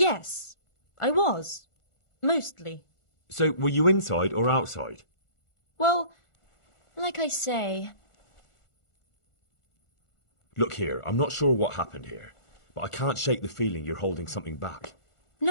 I was. Mostly. So were you inside or outside? Well, like I say... Look here, I'm not sure what happened here, but I can't shake the feeling you're holding something back.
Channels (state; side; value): late; right; 1.4 ms